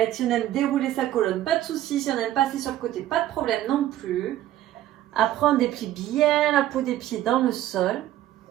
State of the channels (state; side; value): quieter; left; 13.2 dB